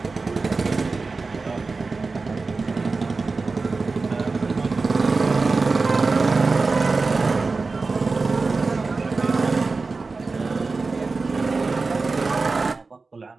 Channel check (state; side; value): quieter; left; 4.0 dB